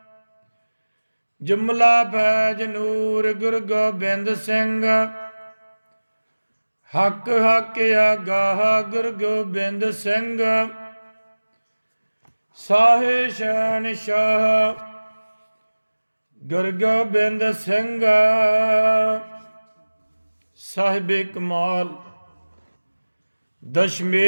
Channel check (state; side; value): inverted; both; correlation -1.00